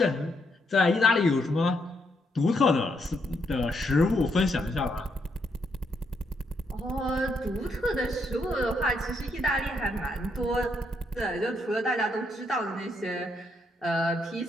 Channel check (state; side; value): normal; both; correlation 0.77